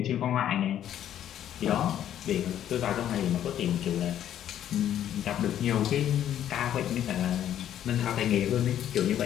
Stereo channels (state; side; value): quieter; right; 10.9 dB